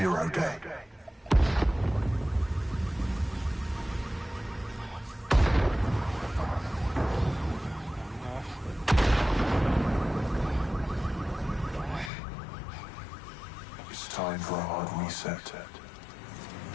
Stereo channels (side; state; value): right; drops out; at 12.1 s